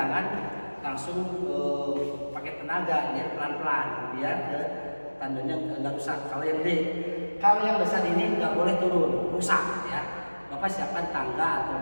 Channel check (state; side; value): inverted; both; correlation -1.00